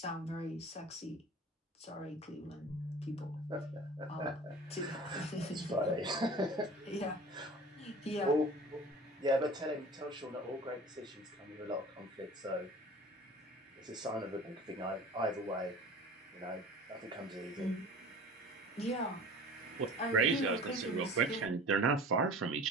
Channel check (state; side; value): normal; both; correlation 0.41